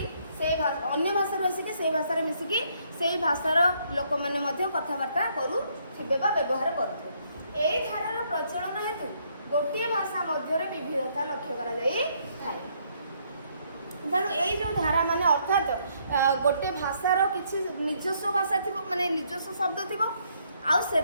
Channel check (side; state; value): both; inverted; correlation -0.70